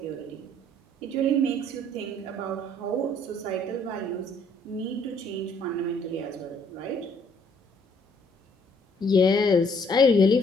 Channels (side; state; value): both; normal; correlation 0.63